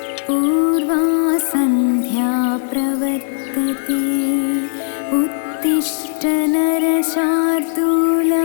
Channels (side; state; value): right; silent; 68 dB below the other